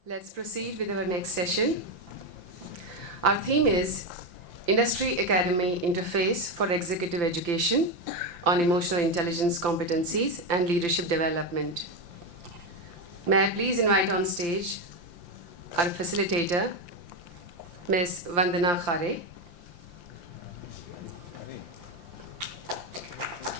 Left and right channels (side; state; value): left; late; 5.8 ms